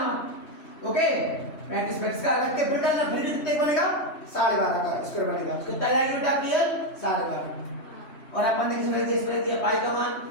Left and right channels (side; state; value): right; late; 3.0 ms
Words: ओके, 35 का अलग के फिर करना, फिर कितने बनेगा? 12.5 का स्क्वायर बनेगा। कितना आएगा बेटा आपकी? 12.5। और अपन ने किसमें दिया? पाई का मान,